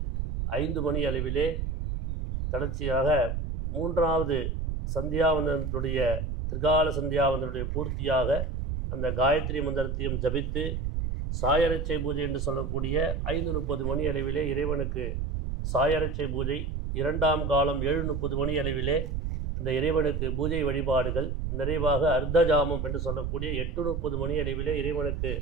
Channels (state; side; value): noise; right; rumble, 3 dB below the sound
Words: 5 மணி அளவிலே தொடர்ச்சியாக 3வது சந்தியாவந்தனத்துடைய திரிகால சந்தியாவந்தனுடைய பூர்த்தியாக அந்த காயத்ரி மந்திரத்தையும் ஜபித்து சாயரட்சை பூஜை என்று சொல்லக்கூடிய 5:30 மணி அளவிலே இறைவனுக்கு சாயரட்சை பூஜை, 2ஆம் காலம் 7:30 மணி அளவிலே அந்த இறைவனுக்கு பூஜை வழிபாடுகள் நிறைவாக அர்த்தஜாமம் என்று சொல்லக்கூடிய 8:30 மணி அளவிலே இறைவனுக்கு